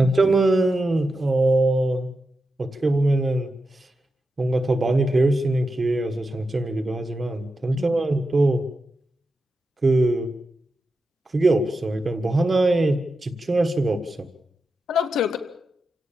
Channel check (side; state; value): both; normal; correlation 0.89